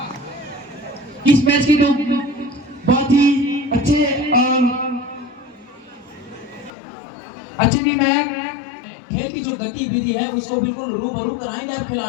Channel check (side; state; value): right; drops out; at 6.7 s